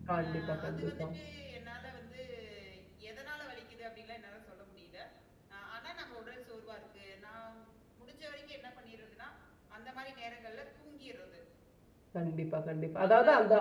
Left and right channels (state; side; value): identical; both; correlation 1.00